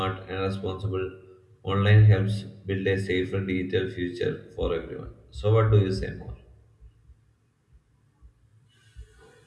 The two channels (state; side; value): identical; both; correlation 1.00